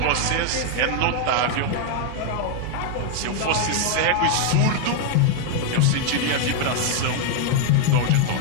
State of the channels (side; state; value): both; different; correlation 0.00